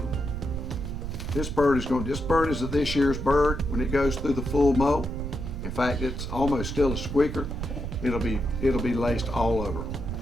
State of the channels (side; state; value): right; noise; rumble, 6 dB below the sound